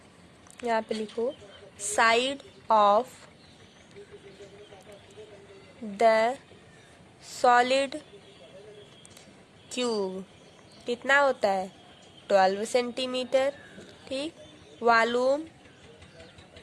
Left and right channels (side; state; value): both; identical; correlation 1.00